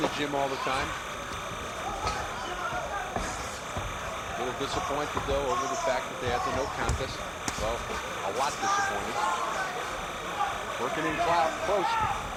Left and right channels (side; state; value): both; identical; correlation 1.00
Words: gym all the time. A little disappointed, though, over the fact that they had the no contest. Well, a lot disappointed. Working in close.